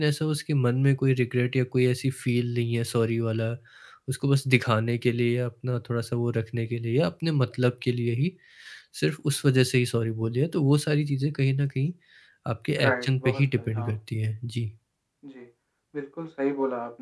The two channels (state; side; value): identical; both; correlation 1.00